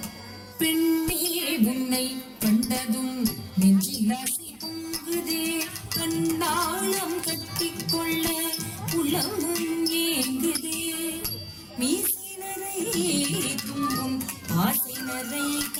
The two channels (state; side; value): identical; both; correlation 1.00